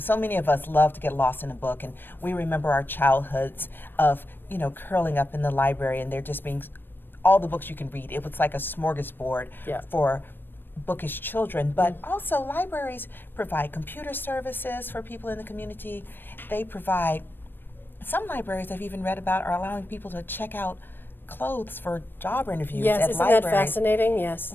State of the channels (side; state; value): right; late; 0.096 ms